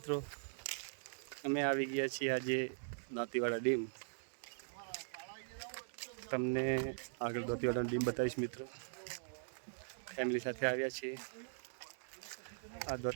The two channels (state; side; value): silent; left; digital silence